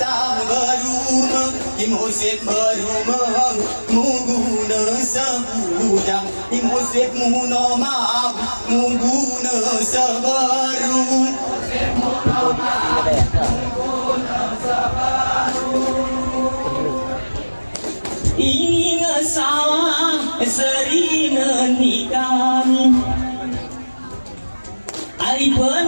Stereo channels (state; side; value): inverted; both; correlation -1.00